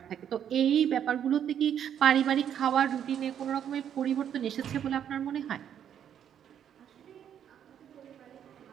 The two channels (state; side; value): quieter; left; 9.3 dB